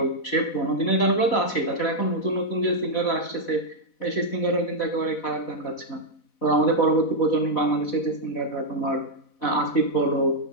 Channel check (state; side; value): late; right; 4.1 ms